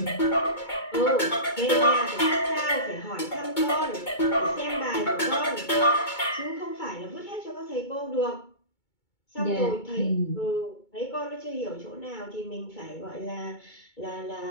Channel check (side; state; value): right; late; 2.2 ms